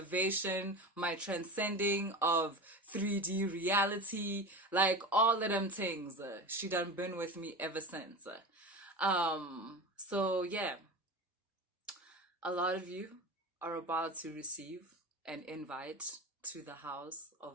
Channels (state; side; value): normal; both; correlation 0.29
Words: my transcending of 3D reality, like all of them things. She done been with me ever since. So yeah, a lot of you are about to receive an invite to the House